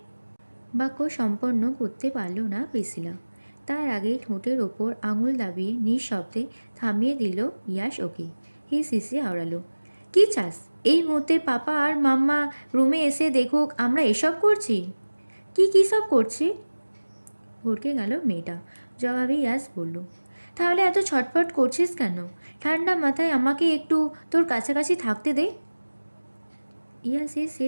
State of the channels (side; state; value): both; inverted; correlation -1.00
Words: বাক্য সম্পন্ন করতে পারল না প্রিসিলা। তার আগেই ঠোঁটের ওপর আঙুল দাবিয়ে নিঃশব্দে থামিয়ে দিল ইয়াস ওকে। সিসি আওড়ালো, কি চাস? এই মুহূর্তে পাপা আর মাম্মা রুমে এসে দেখুক আমরা এসব করছি। কি সব করছি? ভড়কে গেল মেয়েটা। জবাবে ইয়াস বলল, তাহলে এত ছটফট করছিস কেন? ঠান্ডা মাথায় আমাকে একটু তোর কাছাকাছি থাকতে দে। ইয়াসের